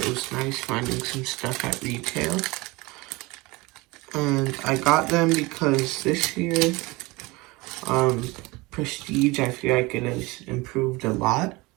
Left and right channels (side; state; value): left; quieter; 23.3 dB